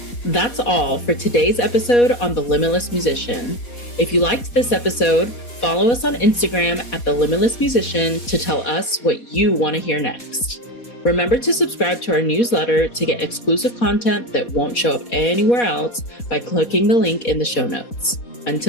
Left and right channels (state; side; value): late; right; 4.2 ms